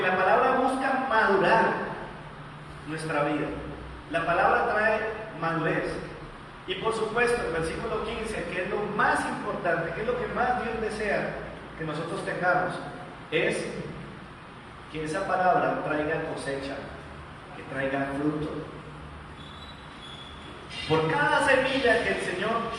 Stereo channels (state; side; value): identical; both; correlation 1.00